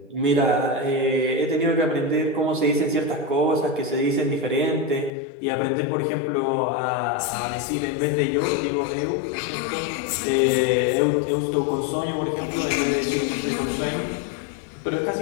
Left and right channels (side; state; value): right; drops out; at 5.1 s